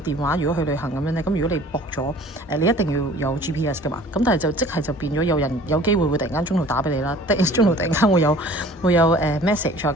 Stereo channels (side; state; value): both; normal; correlation 0.48